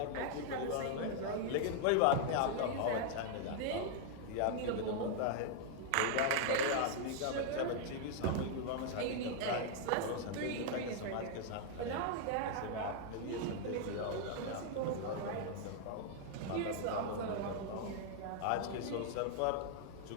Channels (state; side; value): different; both; correlation -0.01